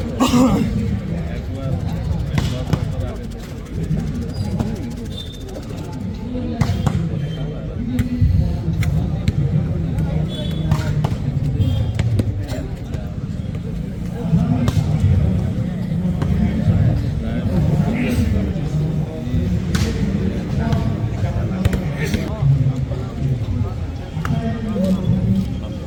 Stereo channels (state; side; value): identical; both; correlation 1.00